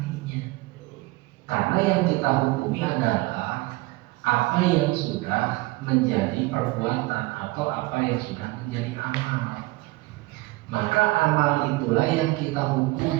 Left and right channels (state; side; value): quieter; left; 21.5 dB